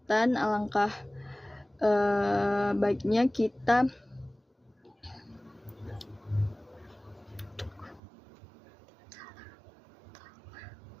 alangkah baiknya kita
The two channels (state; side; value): drops out; left; at 8.0 s